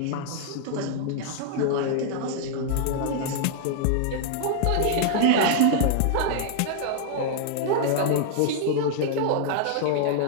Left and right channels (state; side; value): different; both; correlation -0.01